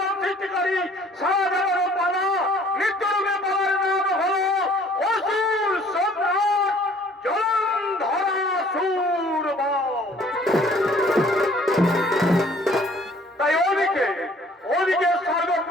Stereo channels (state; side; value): normal; both; correlation 0.56